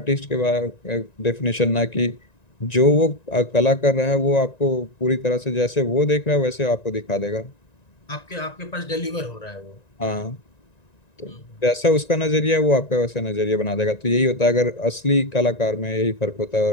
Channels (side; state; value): right; late; 1.9 ms